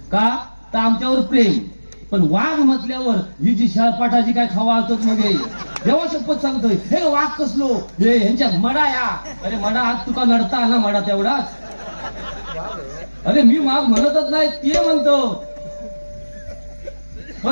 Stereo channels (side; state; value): both; inverted; correlation -1.00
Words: का तर आमच्यावर प्रेम. पण वाघ म्हटल्यावर ही जी शाळपाठाची काय खावा असत मध्ये देवा शपथ सांगतोय हे वाघ कसलो हे ह्यांच्या मडा या. अरे मडा हात तुका नडता ना मडा तेवढाच. अरे मी वाघ म्हणतच नाही ते म्हणतो,